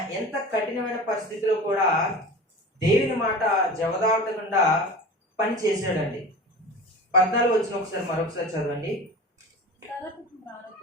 ఎంత కఠినమైన పరిస్థితిలో కూడా దేవుని మాట జవదాటకుండా పని చేశాడండి. 14 వచనం ఒకసారి మరొకసారి చదవండి.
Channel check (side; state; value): both; normal; correlation 0.35